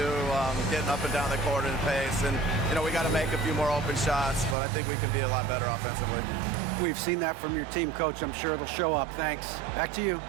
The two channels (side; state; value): left; drops out; at 4.5 s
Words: getting up and down the court in pace. And, we got to make a few more open shots, but I think we can be a lot better offensively. We've seen that from your team, Coach. I'm sure it'll show up. Thanks. Back to you.